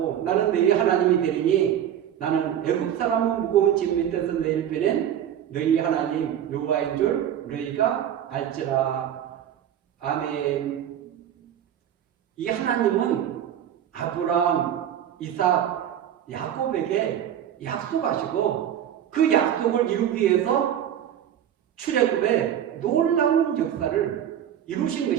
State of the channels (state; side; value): quieter; left; 10.2 dB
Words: 나는 너희 하나님이 되리니 나는 애국 사람은 무거운 짐 밑에서 너희를 빼낸 너희 하나님 여호와인 줄 너희가 알지라. 아멘. 이 하나님은 아브라함, 이삭, 야곱에게 약속하시고 그 약속을 이루기 위해서 출애굽의 놀라운 역사를 이루신